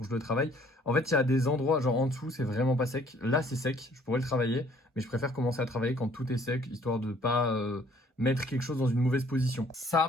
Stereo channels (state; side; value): normal; both; correlation 0.59